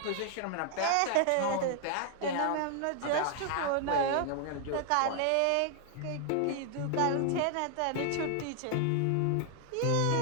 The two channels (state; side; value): different; both; correlation 0.00